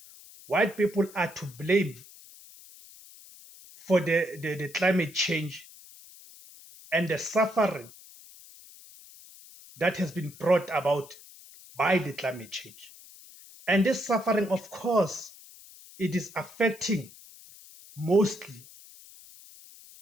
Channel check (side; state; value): left; noise; hiss, 20 dB below the sound